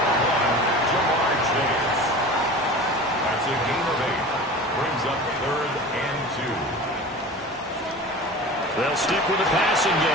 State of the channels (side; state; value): both; normal; correlation 0.36